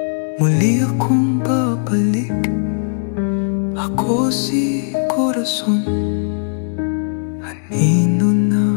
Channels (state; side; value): silent; right; digital silence